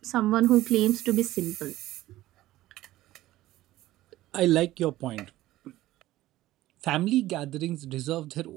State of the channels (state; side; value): quieter; left; 15.8 dB